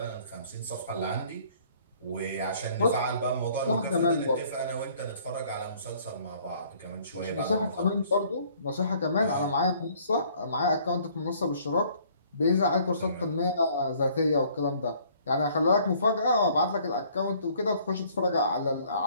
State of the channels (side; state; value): both; inverted; correlation -0.59